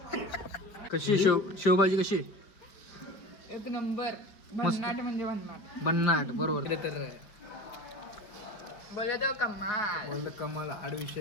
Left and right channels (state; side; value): late; right; 5.2 ms